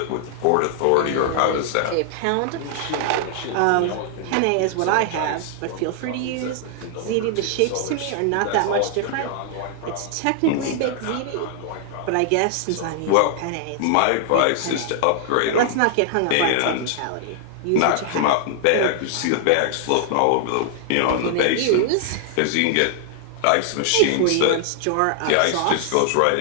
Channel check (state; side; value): different; both; correlation 0.00